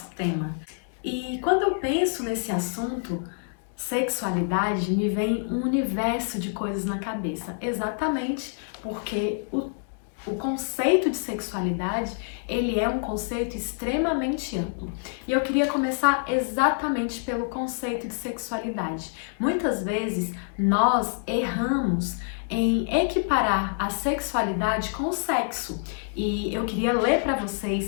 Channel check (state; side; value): silent; right; digital silence